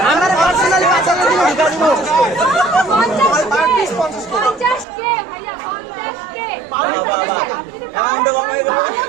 আমার পার্সোনালি 50 দিব ঢুকা দিব 50 কে ভাইয়া 50 কে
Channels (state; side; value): drops out; left; at 4.9 s